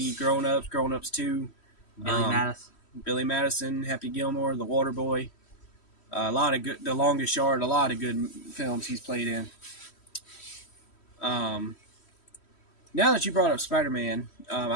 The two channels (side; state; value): right; late; 3.1 ms